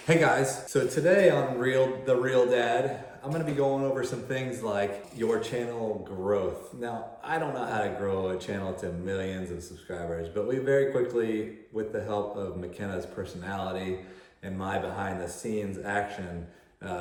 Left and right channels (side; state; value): both; identical; correlation 1.00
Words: Hey guys, so today on The Real Dad, I'm gonna be going over some things like your channel growth. Now, I don't know how to grow a channel to millions of subscribers, but we very quickly, with the help of McKenna's personality and my behind the scenes action,